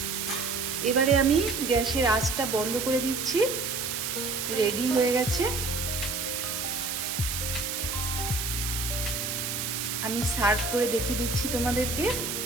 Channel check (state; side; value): noise; right; hiss, 3 dB below the sound